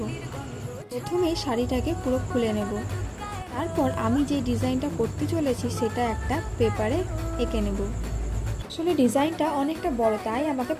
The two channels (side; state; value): both; identical; correlation 1.00